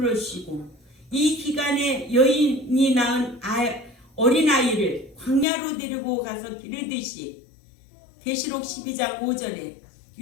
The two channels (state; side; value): drops out; right; at 5.5 s